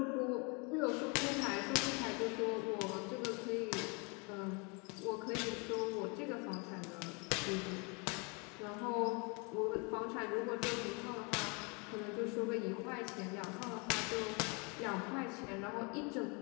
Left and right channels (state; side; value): quieter; right; 31.9 dB